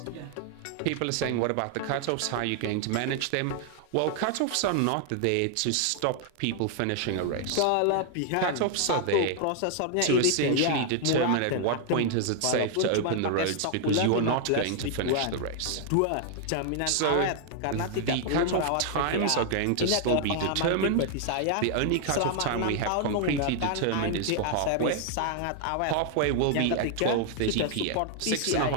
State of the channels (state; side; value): different; both; correlation 0.00